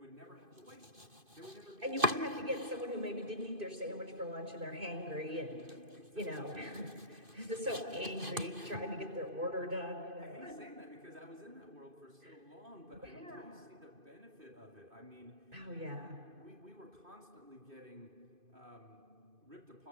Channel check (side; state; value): left; late; 2.5 ms